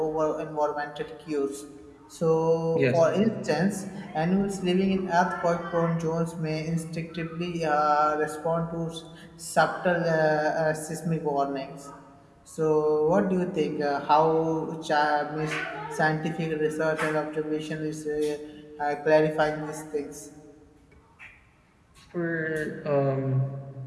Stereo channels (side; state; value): both; identical; correlation 1.00